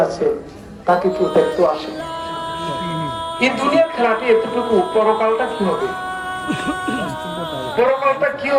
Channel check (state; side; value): identical; both; correlation 1.00